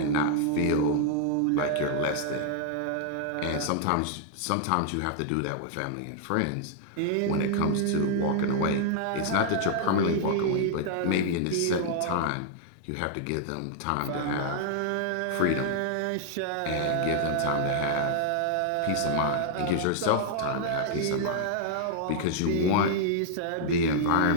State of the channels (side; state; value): both; different; correlation -0.01